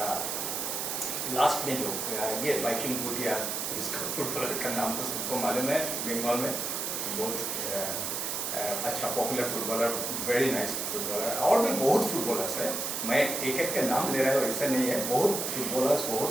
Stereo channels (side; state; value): right; noise; hiss, 2 dB below the sound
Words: लास्ट में जो ये वाइकिंग भूटिया, इसका फुटबॉलर का नाम तो सबको मालूम है, बंगाल में बहुत अच्छा popular footballer, very nice footballer. और भी बहुत फुटबॉलर्स है, मैं एक एक का नाम ले रहा हूँ ऐसा नहीं है, बहुत फुटबॉलर्स,